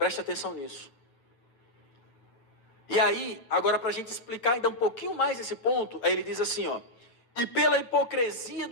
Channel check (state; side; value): late; right; 8.9 ms